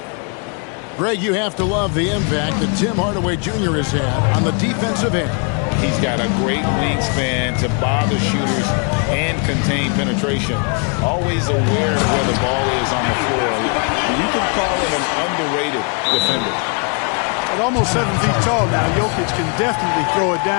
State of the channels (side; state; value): right; quieter; 37.7 dB